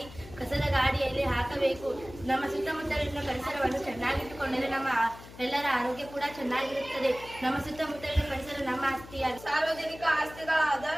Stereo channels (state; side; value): noise; left; hum, 17 dB below the sound